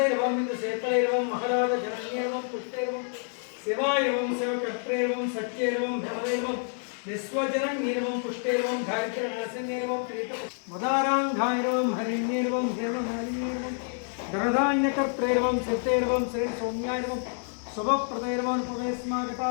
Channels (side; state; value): right; silent; 55 dB below the other